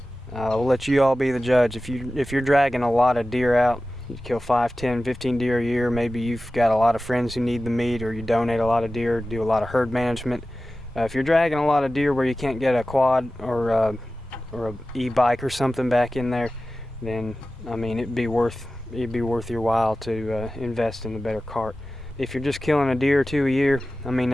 we'll let you all be the judge. If you're dragging a lot of deer out, you kill 5, 10, 15 deer a year. Maybe you've got a lot of friends who need the meat, or you donate a lot of deer, do a lot of herd management. If you're dragging a lot of deer where you can't get a quad or a e-bike or something back in there, then I mean it'd be worth your while to invest in a better cart. If you're just killing a deer or two a year, I mean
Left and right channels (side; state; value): both; normal; correlation 0.95